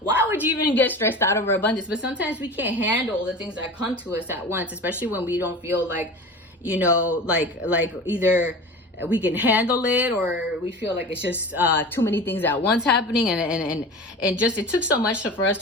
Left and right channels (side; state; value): both; normal; correlation 0.34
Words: would you even get stressed out over abundance? But sometimes we can't handle the things that come to us at once, especially when we don't feel like, you know, like either we can handle it, or we feel like it's just too many things at once happening, and just it took so much for us